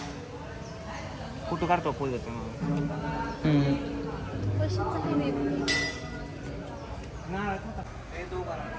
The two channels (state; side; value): identical; both; correlation 1.00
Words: कुठं काढतो पोज येतो.